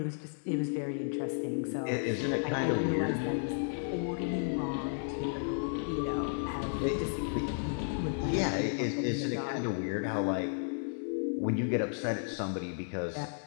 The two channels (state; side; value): silent; right; 56 dB below the other